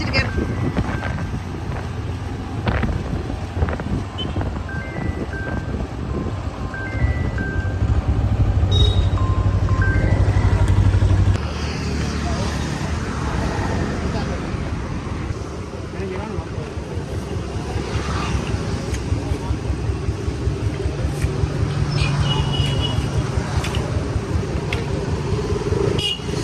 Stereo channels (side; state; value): both; identical; correlation 1.00